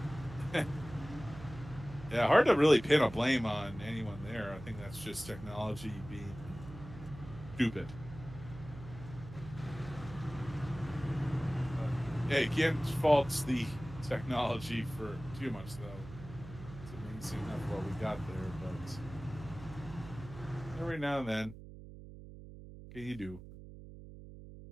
yeah, hard to really pin a blame on anyone there. I think that's just technology being stupid. Yeah, you can't fault the technology for too much, though. It's amazing enough what we got there, but every now and then, what can you do?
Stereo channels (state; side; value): noise; right; hum, 14 dB below the sound